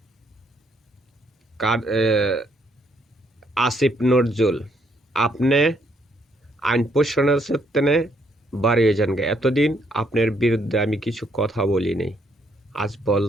আসিফ নজরুল, আপনি আইন প্রশাসনের ক্ষেত্রে বাড়িয়ে যান। এতদিন আপনার বিরুদ্ধে আমি কিছু কথা বলিনি, আজ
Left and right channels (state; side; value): normal; both; correlation 0.71